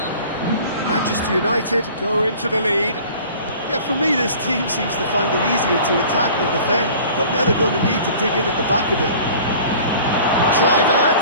Manchester United go into the lead. Yeah, for me, this team seems to find it easier to attack than defend, but now they're going to need to dig in at the back a bit.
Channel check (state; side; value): inverted; both; correlation -0.46